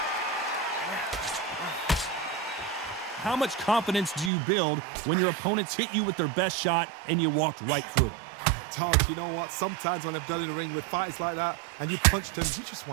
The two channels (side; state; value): left; drops out; at 4.3 s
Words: How much confidence do you build when your opponents hit you with their best shot and you walked right through it? Todd, you know what? Sometimes when I've done in the ring with fights like that and you punch them, you just